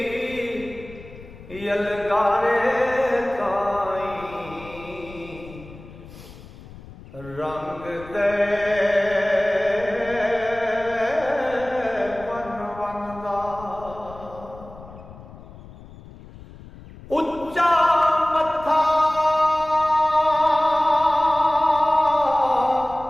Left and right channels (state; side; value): noise; left; rumble, 18 dB below the sound